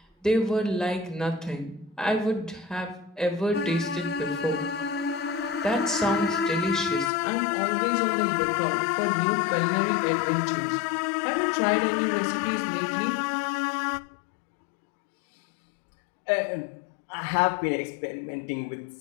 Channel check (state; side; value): drops out; right; at 7.1 s